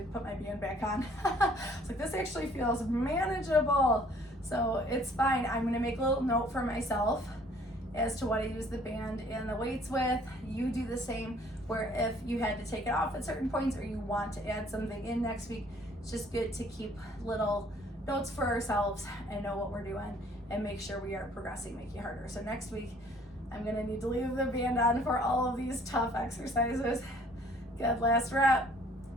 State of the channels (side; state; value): both; normal; correlation 0.58